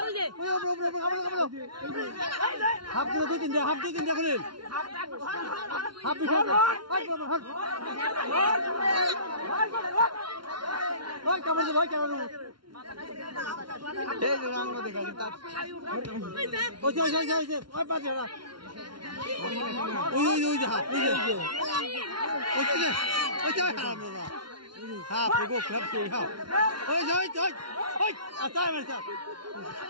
হাপ দিলে দুই তিন দে হাপ দুই তিন দে খুলেন হাপ দিছে ওই কেমন ভাই কেমন এই যে রঙ দেখা তা ওই যে ওই বাজে না ওই যে হাপ ওই যে হাপ না হাপ গো খাপ কে হাপ ওই আতাই মারছা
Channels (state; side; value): late; left; 0.73 ms